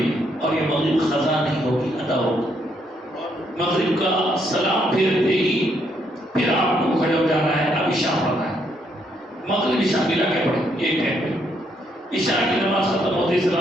اور یہ مغرب قضا نہیں ہوگی، ادا ہوگی۔ مغرب کا سلام پھیرتے ہی پھر آپ کو کھڑے ہو جانا ہے، اب عشاء پڑھنا ہے، مغرب عشاء ملا کے پڑھیں ایک ٹائم پہ۔ عشاء کی نماز ختم ہوتے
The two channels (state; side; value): normal; both; correlation 0.73